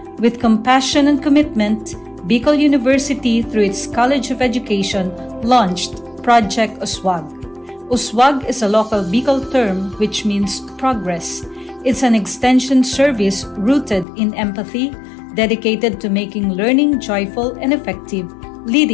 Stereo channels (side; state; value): right; drops out; at 14.1 s